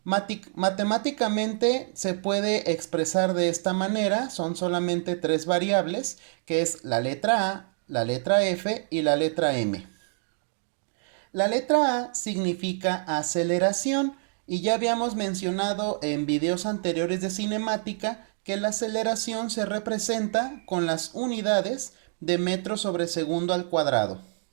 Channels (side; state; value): left; silent; digital silence